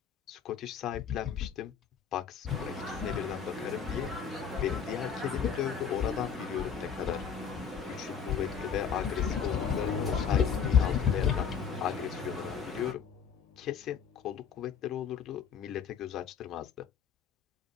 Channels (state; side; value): quieter; right; 7.0 dB